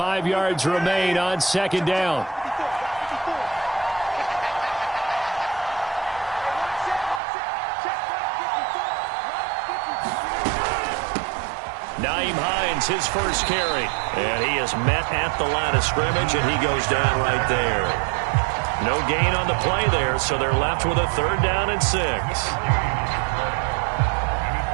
yards remain on second down. Nyheim Hines, his first carry. And he is met at the line of scrimmage, and he goes down right there. No gain on the play there, so they're left with a 3rd down and 6.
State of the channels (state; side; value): drops out; left; at 7.2 s